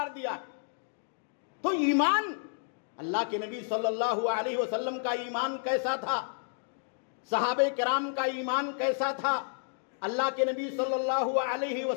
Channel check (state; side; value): silent; right; digital silence